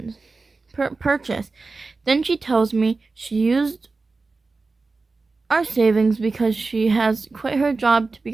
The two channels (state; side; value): quieter; left; 3.9 dB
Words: Then she tells me she used our savings because she has quit her job to